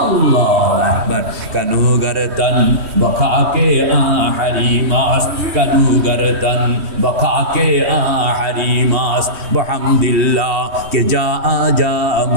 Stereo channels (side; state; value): left; late; 3.1 ms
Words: আল্লাহু আকবার। কানু গরতন বখাকে আহরিমাস, কানু গরতন বখাকে আহরিমাস, বহামদিল্লাহ কে যা আজা